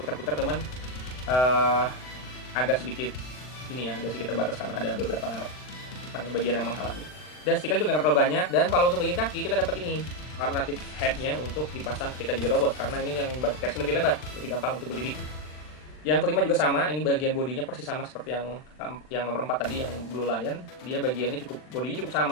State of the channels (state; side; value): late; right; 39 ms